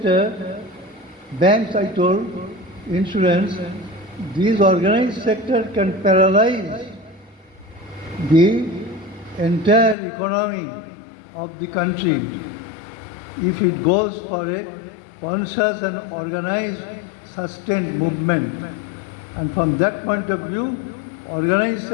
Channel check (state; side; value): drops out; right; at 10.0 s